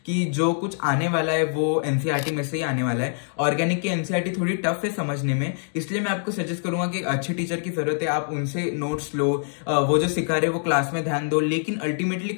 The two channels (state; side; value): silent; right; digital silence